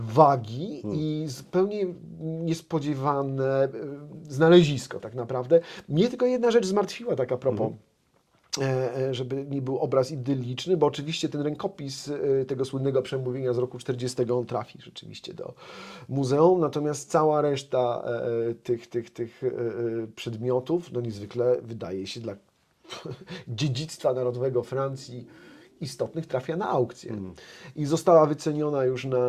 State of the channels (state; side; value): identical; both; correlation 1.00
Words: i zupełnie niespodziewane znalezisko tak naprawdę. Mnie tylko jedna rzecz zmartwiła tak a propos, żeby nie był obraz idylliczny, bo oczywiście ten rękopis tego słynnego przemówienia z roku 40 on trafi rzeczywiście do muzeum, natomiast cała reszta tych przedmiotów, no niezwykle wydaje się dla dziedzictwa narodowego Francji istotnych, trafia na aukcję. I została wyceniona już